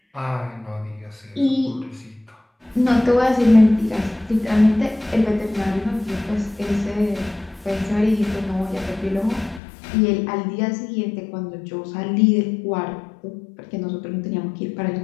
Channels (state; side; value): drops out; right; at 9.6 s